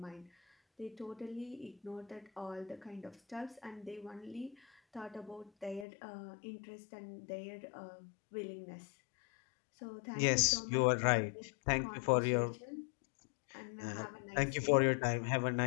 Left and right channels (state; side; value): drops out; right; at 5.9 s